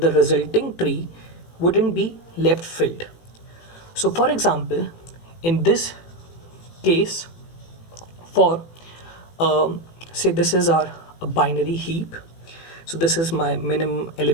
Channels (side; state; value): right; late; 18 ms